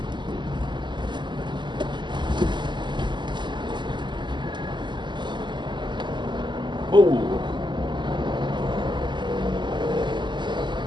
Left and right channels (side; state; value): left; late; 0.22 ms